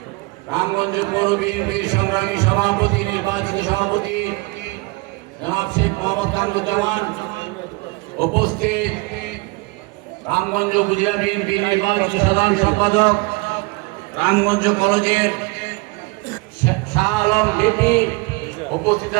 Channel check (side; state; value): left; quieter; 25.8 dB